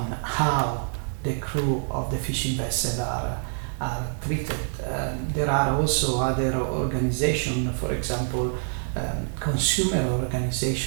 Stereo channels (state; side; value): silent; left; digital silence